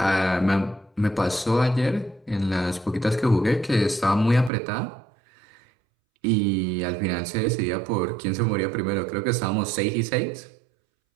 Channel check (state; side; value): drops out; left; at 4.5 s